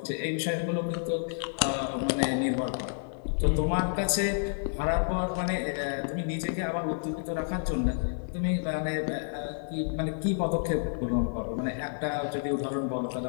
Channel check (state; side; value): silent; right; digital silence